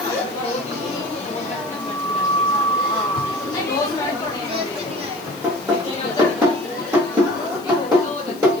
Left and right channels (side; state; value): left; noise; hiss, 21 dB below the sound